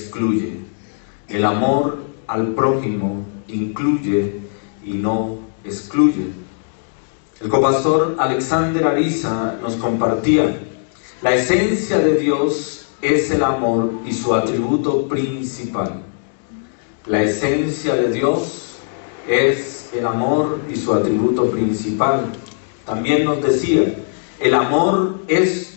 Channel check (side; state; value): right; silent; digital silence